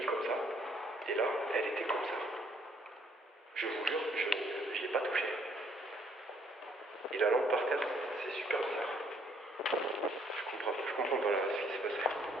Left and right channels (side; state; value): both; normal; correlation 0.66